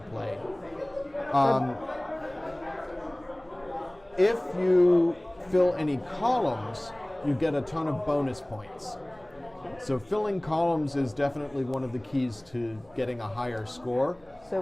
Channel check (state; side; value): noise; right; hum, 29 dB below the sound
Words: play. If you fill any columns, you get a ton of bonus points. So filling columns is definitely one of the keys to getting a higher score.